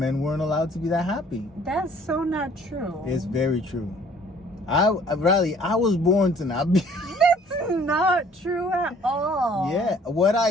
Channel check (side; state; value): both; normal; correlation 0.56